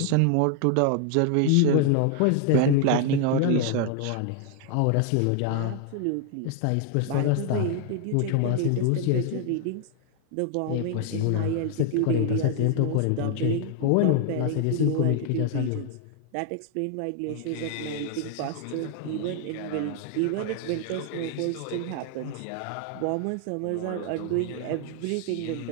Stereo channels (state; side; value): different; both; correlation 0.00